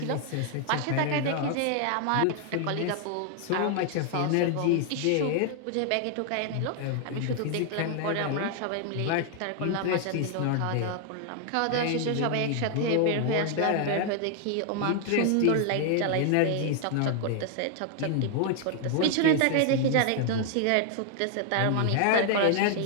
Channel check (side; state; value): both; different; correlation 0.00